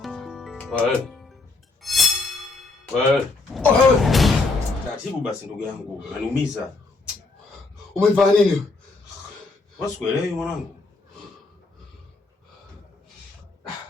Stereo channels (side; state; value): right; quieter; 3.6 dB